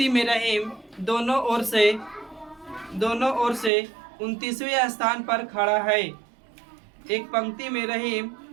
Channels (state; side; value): drops out; left; at 3.7 s